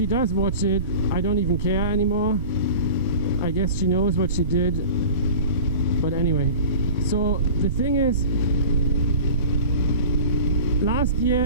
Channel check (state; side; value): inverted; both; correlation -0.37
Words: does watch it, I don't even care anymore. I guess she knows what she did. But anyway, so the thing is, last year